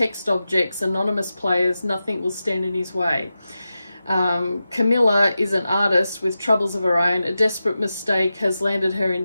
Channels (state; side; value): inverted; both; correlation -0.92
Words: objects, anonymous players, nothing will stand in his way. Camilla is an artist with troubles of her own. A desperate mistake has landed her in